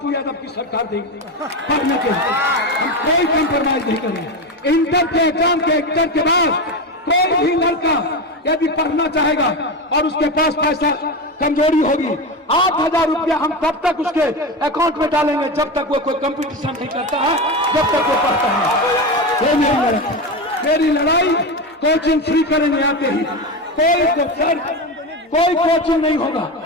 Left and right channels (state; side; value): normal; both; correlation 0.18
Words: यादव की सरकार देगी पढ़ने के लिए। हम कोई कंप्रोमाइज नहीं करेंगे। इंटर के एग्जाम के बाद कोई भी लड़का यदि पढ़ना चाहेगा और उसके पास पैसा कमजोरी होगी, 8,000 रुपया हम तब तक उसके अकाउंट में डालेंगे जब तक वो कोई कंपटीशन नहीं करता है, जब तक वो पढ़ता है। ये मेरी लड़ाई कोचिंग फ्री करेंगे आते ही। कोई कोचिंग नहीं होगा,